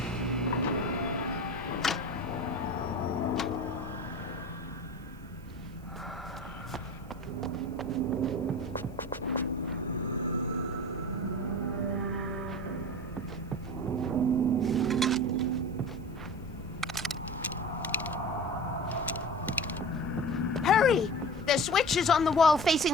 Hurry! The switch is on the wall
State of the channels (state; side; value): noise; right; hiss, 30 dB below the sound